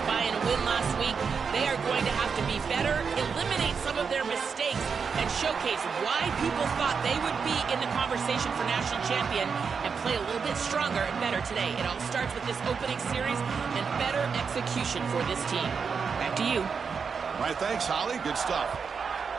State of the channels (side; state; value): left; quieter; 5.8 dB